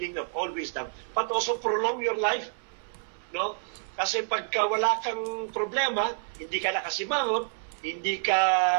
of all wisdom, but also prolong your life. No? Kasi pagka wala kang problema, hindi ka nakasimangot, hindi ka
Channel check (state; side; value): silent; left; 59 dB below the other